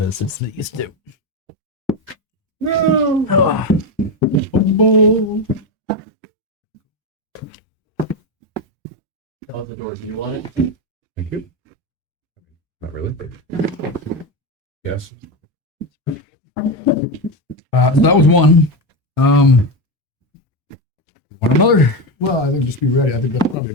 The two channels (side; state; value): both; normal; correlation 0.13